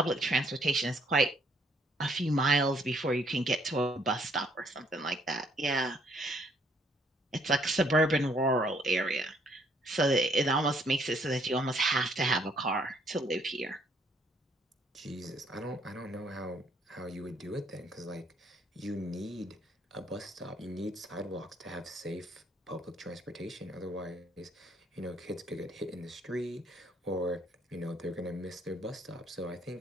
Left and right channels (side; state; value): both; normal; correlation 0.67